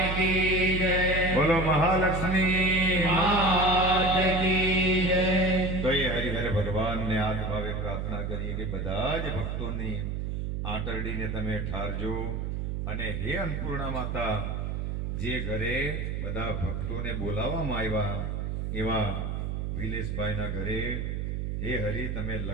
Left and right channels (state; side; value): noise; right; hum, 2 dB below the sound